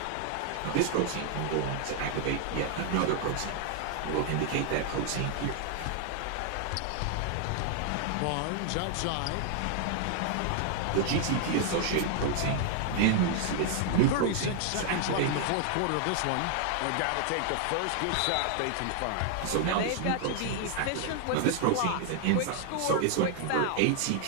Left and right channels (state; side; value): different; both; correlation 0.00